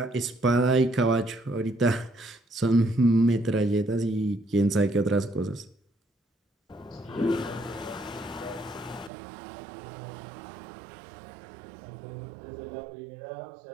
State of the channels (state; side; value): drops out; left; at 9.1 s